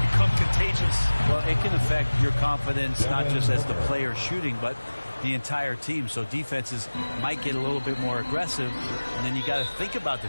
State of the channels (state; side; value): inverted; both; correlation -1.00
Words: become contagious. Well, it can affect your confidence, not just as the player shooting, but the entire team. So defenses might get a little bit more aggressive, and then you got to think about the